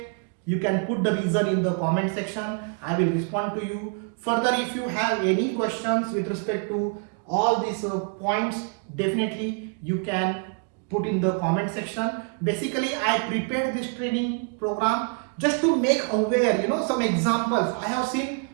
you can put the reason in the comment section. I will respond to you. Further, if you have any questions with respect to all these points, definitely you can put in the comment section. Basically, I prepared this training program just to make aware, some examples. I have seen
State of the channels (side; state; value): left; quieter; 39.9 dB